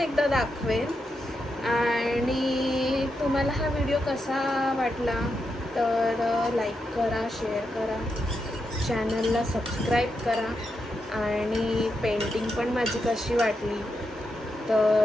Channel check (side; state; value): both; normal; correlation 0.85